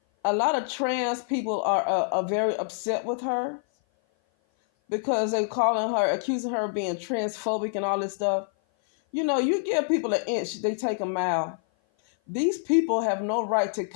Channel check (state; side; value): silent; right; 56 dB below the other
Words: a lot of trans people are very upset with her because they're accusing her of being transphobic and all this stuff. You know, you give people an inch, they take a mile. These people have no right to